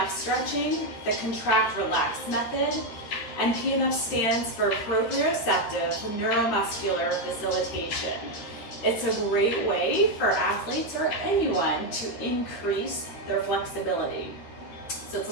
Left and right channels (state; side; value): late; right; 13 ms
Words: stretching, the contract relax method, and PNF stands for Proprioceptive Neuromuscular Facilitation. It's a great way for athletes or anyone to increase their flexibility. So it's